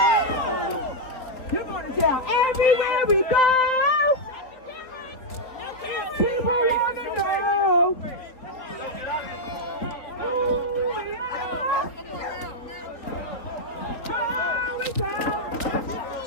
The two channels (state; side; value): late; right; 3.6 ms